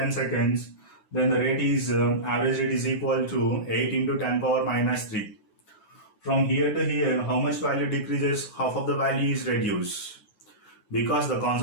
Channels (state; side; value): late; right; 9.3 ms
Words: seconds, then the rate is average rate is equal to 8 into 10 power minus 3. From here to here, how much value decreases? Half of the value is reduced. Because the